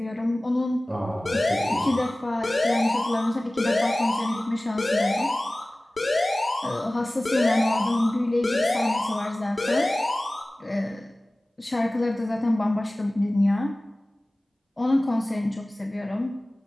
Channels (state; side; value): normal; both; correlation 0.98